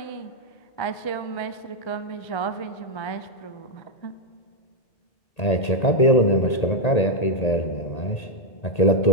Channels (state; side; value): late; right; 1.8 ms